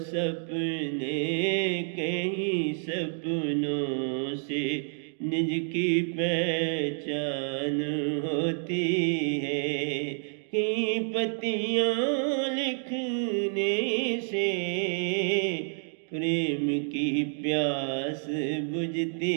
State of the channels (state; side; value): silent; left; digital silence